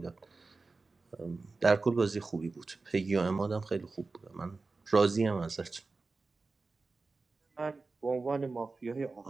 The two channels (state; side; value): quieter; left; 3.8 dB